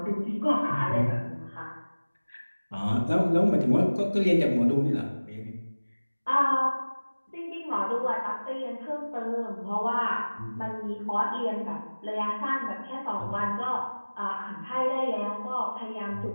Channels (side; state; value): both; inverted; correlation -1.00